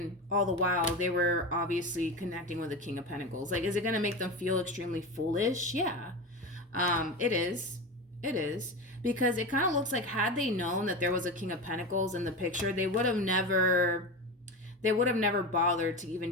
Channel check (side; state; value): both; normal; correlation 0.23